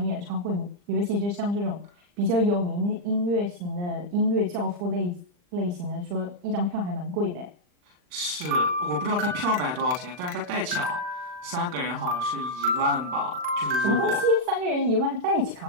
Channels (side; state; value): left; late; 39 ms